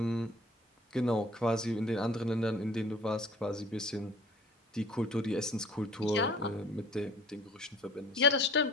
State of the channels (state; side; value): normal; both; correlation 0.49